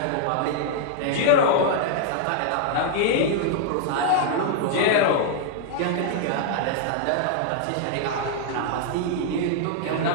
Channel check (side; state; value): both; different; correlation -0.01